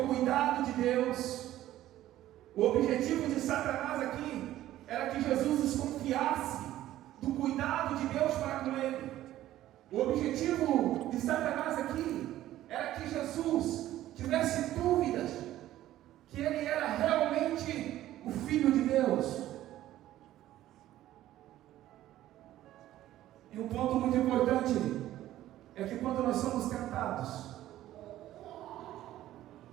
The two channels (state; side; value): quieter; left; 13.9 dB